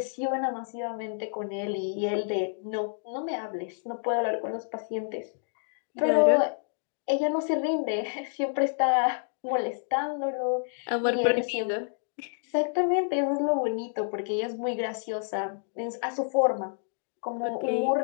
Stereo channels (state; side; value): silent; right; digital silence